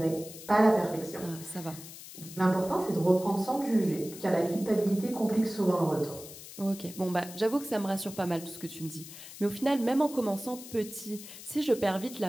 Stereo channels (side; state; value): left; noise; hiss, 14 dB below the sound